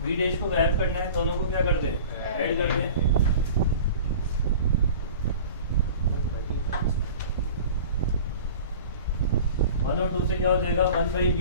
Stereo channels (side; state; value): both; inverted; correlation -0.40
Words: V डैश को गायब करना है, दोनों को क्या कर दें, ऐड कर दें। वन और टू से क्या हो जाएगा,